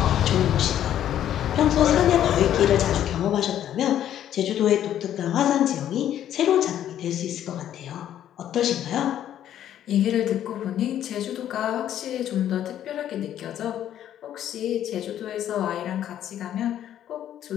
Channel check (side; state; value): right; quieter; 11.0 dB